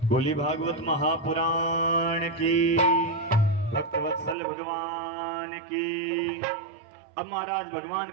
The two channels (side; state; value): left; drops out; at 4.4 s